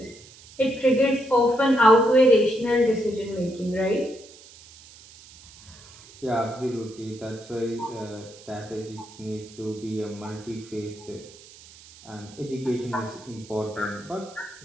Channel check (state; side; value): noise; right; hiss, 21 dB below the sound